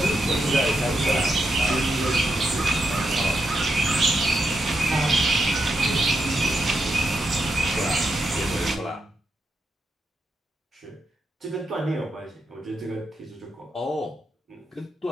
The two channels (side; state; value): both; normal; correlation 0.84